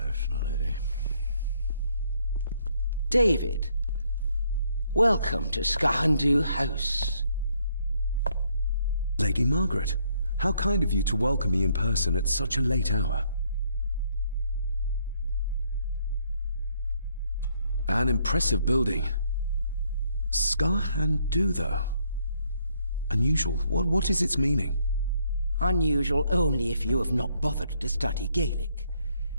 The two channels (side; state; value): both; inverted; correlation -0.71